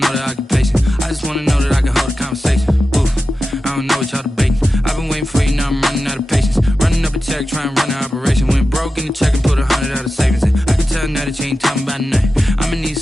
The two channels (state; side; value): normal; both; correlation 0.92